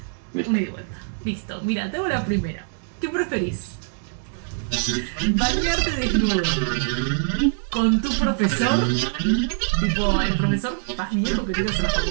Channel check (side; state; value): left; silent; digital silence